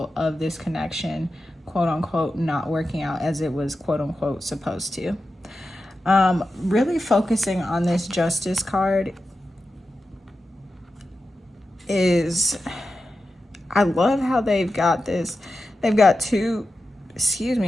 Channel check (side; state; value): both; normal; correlation 0.91